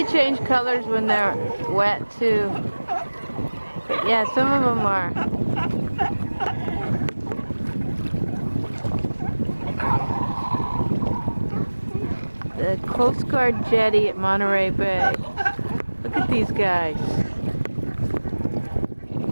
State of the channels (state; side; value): inverted; both; correlation -1.00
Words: change colors when they're wet too. But yeah, some of them are. The Coast Guard jetty at Monterey Bay. Look at these guys. Isn't